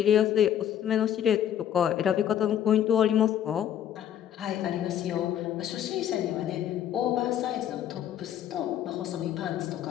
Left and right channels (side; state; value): right; quieter; 10.3 dB